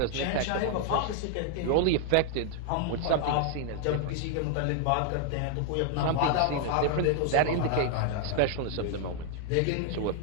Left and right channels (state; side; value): different; both; correlation 0.00